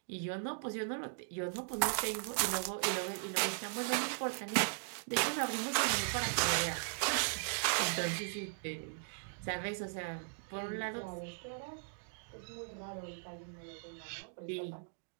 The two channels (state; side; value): silent; left; digital silence